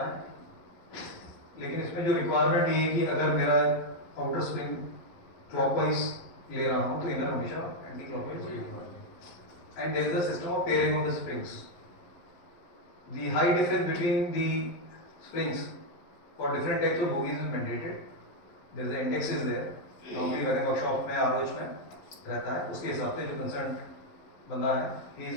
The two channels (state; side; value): late; right; 11 ms